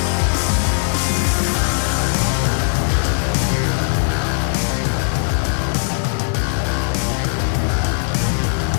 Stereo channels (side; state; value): right; silent; 67 dB below the other